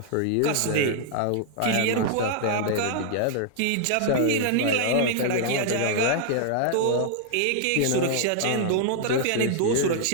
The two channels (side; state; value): both; different; correlation -0.01